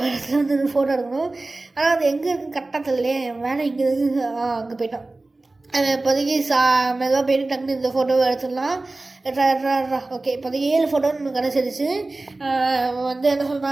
இடத்துல வந்து ஃபோட்டோ எடுக்கணும். ஆனால் அது எங்கே இருக்குன்னு கரெக்டாக தெரியலையே. வேலை இங்கே இருக்குது. அங்கே போயிட்டான். இப்போதைக்கு மெதுவாக போயிட்டு டக்குனு இந்த ஃபோட்டோவை எடுத்துடலாம். ஓகே, இப்போதைக்கு 7 ஃபோட்டோன்னு கிடச்சிருச்சு. வந்து என்ன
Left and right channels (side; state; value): left; quieter; 3.1 dB